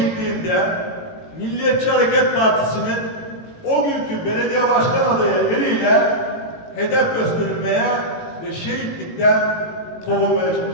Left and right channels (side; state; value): right; late; 18 ms